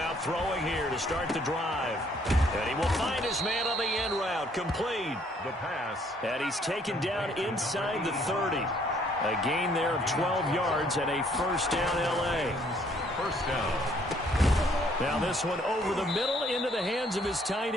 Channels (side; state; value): both; normal; correlation 0.64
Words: throwing here to start the drive. And he will find his man on the end route. Complete. The pass. And he's taken down inside the 30. A gain there of 12 yards and a first down L.A. First down. Now this one over the middle into the hands of his tight